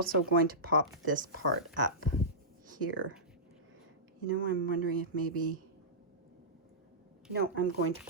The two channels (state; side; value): normal; both; correlation -0.16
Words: going to pop this part up here. You know, I'm wondering if maybe, no, I'm going to